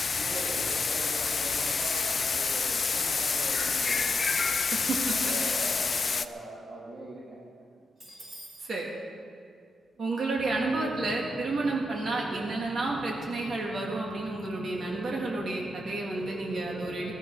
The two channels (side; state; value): both; normal; correlation 0.85